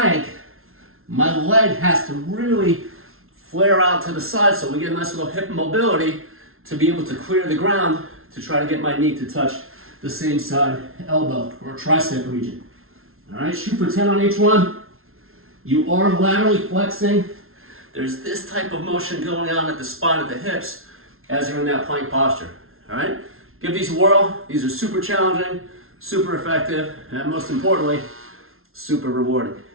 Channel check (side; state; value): left; late; 0.62 ms